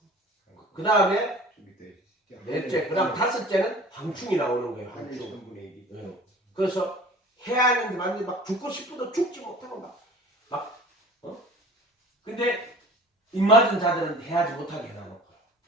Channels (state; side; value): normal; both; correlation 0.43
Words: 그 다음에 넷째, 그 다음 다섯째는 황충이 나오는 거예요. 황충. 네. 그래서 해야 하는데 완전히 막 죽고 싶어도 죽지 못하고 근데 입맞은 자들은 해야지 못하게 해놔놓고